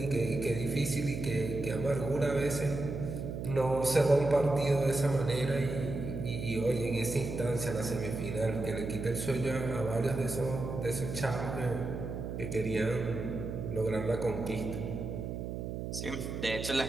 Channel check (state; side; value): noise; right; hum, 5 dB below the sound